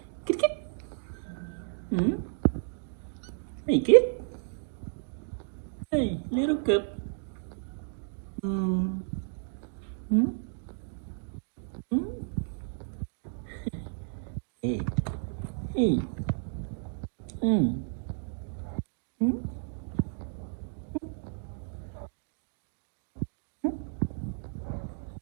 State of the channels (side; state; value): left; silent; digital silence